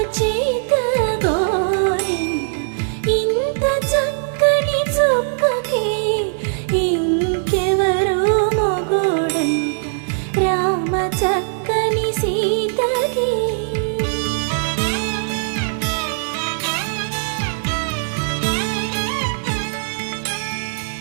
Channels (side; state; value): left; silent; digital silence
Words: చేత గోరింట ఇంత చక్కని చుక్కకి ఇంకెవరు మొగుడంట రామ చక్కని సీతకి.